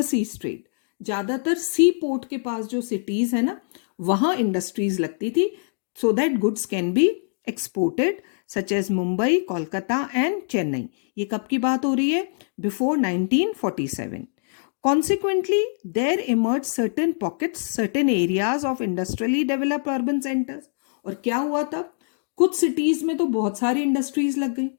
trade. ज्यादातर सी पोर्ट के पास जो सिटीज है ना, वहां इंडस्ट्रीज लगती थी so that goods can be exported, such as Mumbai, Kolkata and Chennai. ये कब की बात हो रही है? Before 1947. Consequently, there emerged certain pockets, certain areas of industrially developed urban centers. और क्या हुआ तब? कुछ सिटीज में तो बहुत सारी इंडस्ट्रीज लग गई,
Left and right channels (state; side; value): silent; right; digital silence